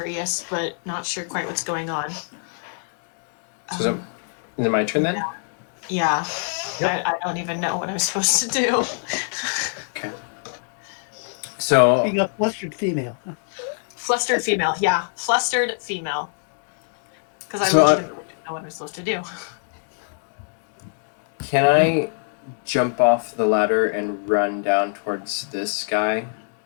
but not sure quite what's going on. So is it my turn then? Yeah. Yep. I don't even know what I'm supposed to do. Okay. So Being a flustered female. Flustered female, yeah. Flustered female. Because I So really didn't know what I'm supposed to do. can I jump off the ladder and run down towards this guy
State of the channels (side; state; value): right; silent; digital silence